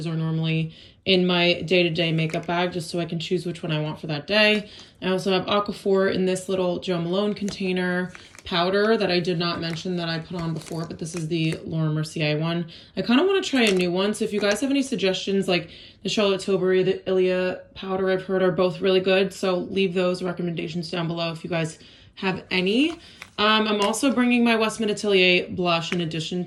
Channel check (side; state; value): both; identical; correlation 1.00